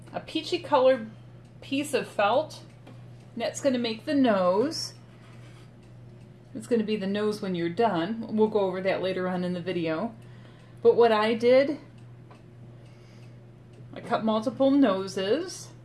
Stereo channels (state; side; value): identical; both; correlation 1.00